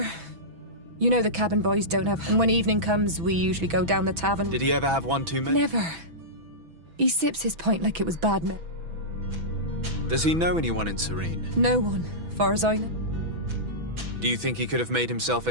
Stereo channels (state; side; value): late; left; 6.1 ms